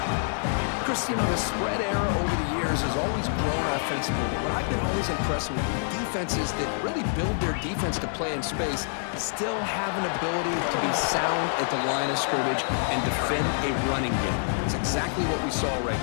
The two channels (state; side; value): silent; right; digital silence